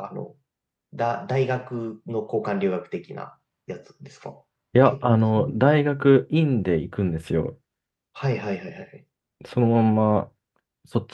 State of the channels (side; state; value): both; identical; correlation 1.00